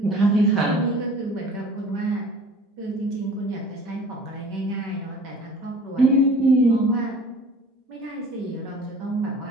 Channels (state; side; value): normal; both; correlation 0.45